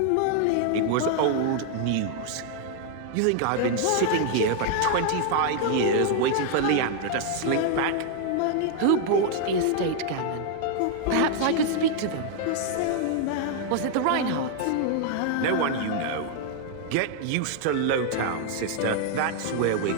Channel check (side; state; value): both; different; correlation 0.00